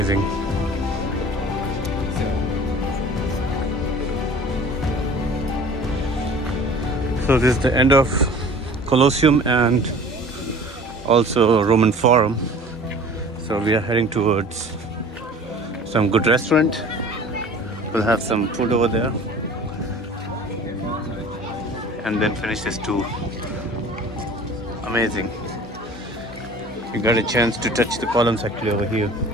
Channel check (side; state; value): both; normal; correlation 0.44